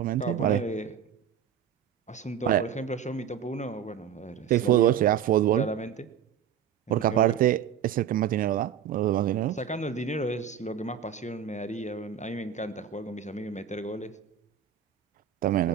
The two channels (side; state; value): left; quieter; 8.8 dB